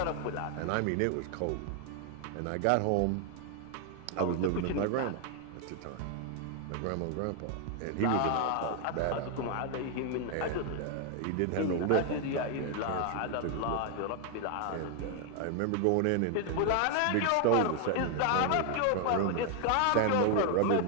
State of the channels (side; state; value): both; different; correlation 0.00